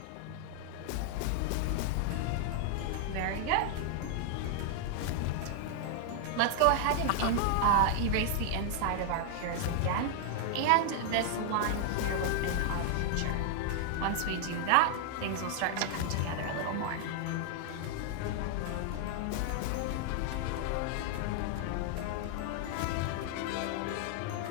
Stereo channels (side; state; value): both; different; correlation 0.00